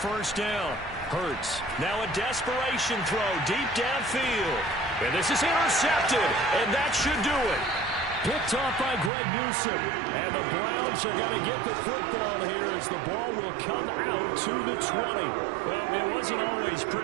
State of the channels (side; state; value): left; drops out; at 9.1 s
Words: first down, Hurts. Now a desperation throw deep downfield. And this is intercepted, and that should do it. Picked off by Greg Newsome. And the Browns are going to get the football here as the ball will come out to the 20. Well, it wasn't always